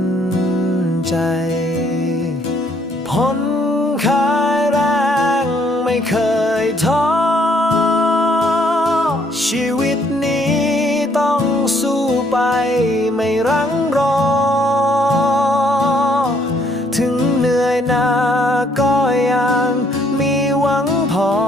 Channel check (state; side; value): normal; both; correlation 0.67